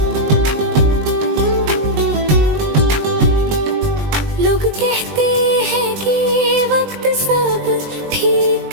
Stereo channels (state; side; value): late; left; 20 ms